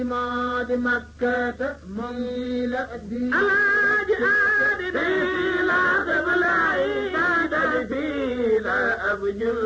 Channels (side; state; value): both; identical; correlation 1.00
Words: ماد مكة مميل الدين على جهادنا لا تبلعي لا